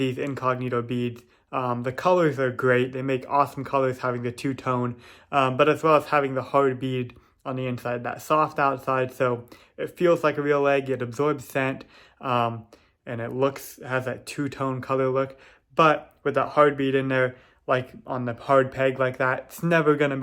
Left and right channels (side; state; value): both; identical; correlation 1.00